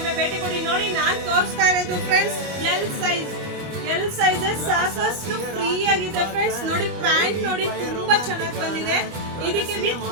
ಭೇಟಿ ಕೊಡಿ. ನೋಡಿ, ನಾನ್ ತೋರಿಸ್ತಾ ಇರೋದು ಫ್ರೆಂಡ್ಸ್ ಎಲ್ ಸೈಜಸ್ ಸಾಕಷ್ಟು ಫ್ರೀ ಆಗಿದೆ. ಫ್ರೆಂಡ್ಸ್ ನೋಡಿ, ಪ್ಯಾಂಟ್ ನೋಡಿ ತುಂಬಾ ಚೆನ್ನಾಗಿ ಬಂದಿದೆ. ಇದಕ್ಕೆ ವಿತ್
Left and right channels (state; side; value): late; left; 25 ms